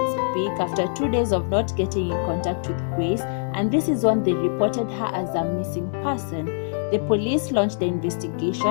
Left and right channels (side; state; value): right; silent; digital silence